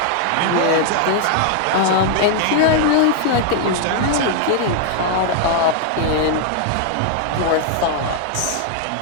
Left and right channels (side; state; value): both; different; correlation 0.00